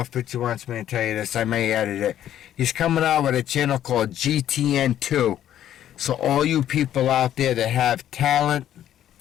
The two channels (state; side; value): quieter; right; 11.3 dB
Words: if Pitcher wants me to tell you this. I may edit it. He's coming out with a channel called GTN2. So all you people out there that have talent,